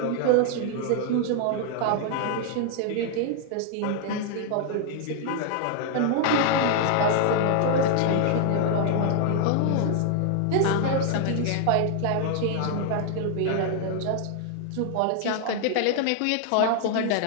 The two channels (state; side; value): different; both; correlation 0.00